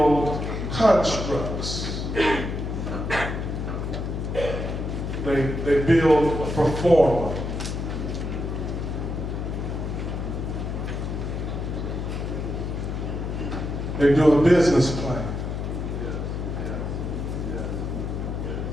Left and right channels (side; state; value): left; noise; hum, 3 dB below the sound